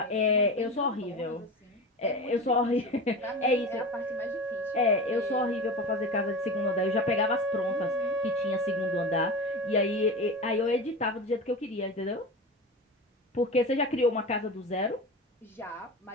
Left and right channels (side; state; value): both; normal; correlation 0.29